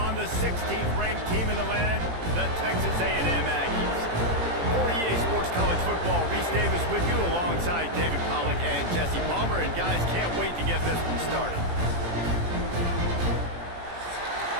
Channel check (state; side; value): late; left; 17 ms